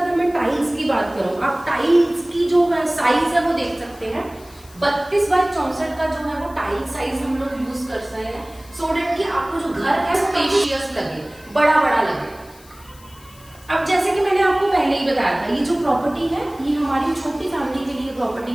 मैं टाइल्स की बात करूँ, आप टाइल्स की जो है साइज है वो देख सकते हैं। 32 बाई 64 का जो है वो टाइल साइज हम लोग यूज कर सकते हैं, सो डेट कि आपको जो घर है स्पेशियस लगे, बड़ा बड़ा लगे। अब जैसे कि मैंने आपको पहले ही बताया था, ये जो प्रॉपर्टी है ये हमारी छोटी फैमिली के लिए प्रॉपर्टी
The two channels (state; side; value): noise; left; hiss, 24 dB below the sound